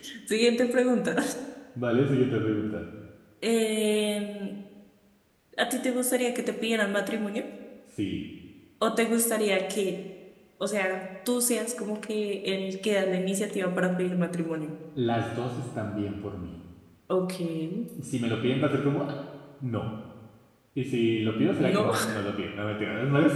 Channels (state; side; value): identical; both; correlation 1.00